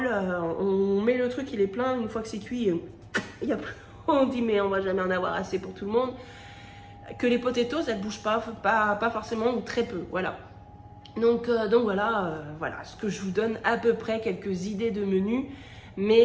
On met le truc, il est plein. Une fois que c'est cuit, il y a plus. On dit mais on va jamais en avoir assez pour tout le monde. Que les potatoes, elles ne bougent pas forcément ou très peu. Voilà. Donc voilà, voilà ce que je vous donne à peu près quelques idées de menu.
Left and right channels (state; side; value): identical; both; correlation 1.00